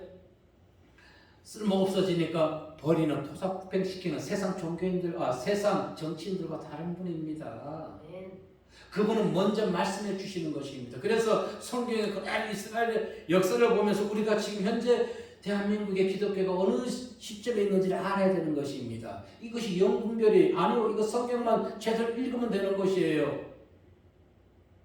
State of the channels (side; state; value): both; identical; correlation 1.00